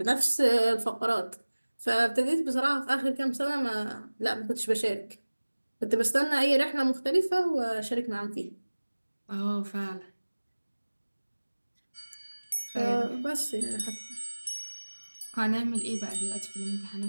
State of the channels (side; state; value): both; inverted; correlation -1.00